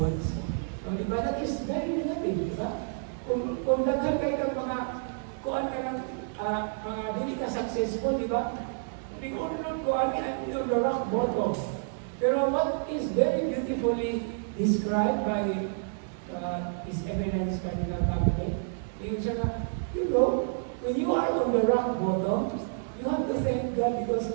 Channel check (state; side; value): silent; left; digital silence